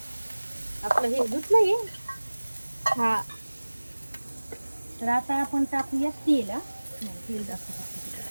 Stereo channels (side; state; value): both; inverted; correlation -1.00